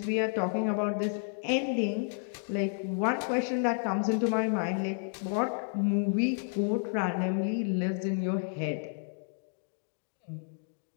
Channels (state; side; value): silent; right; digital silence